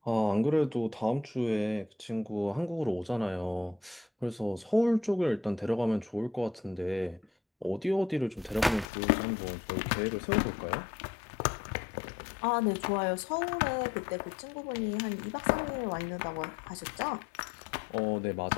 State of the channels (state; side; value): drops out; right; at 8.8 s